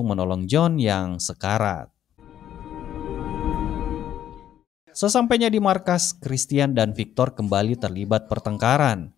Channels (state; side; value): quieter; right; 10.8 dB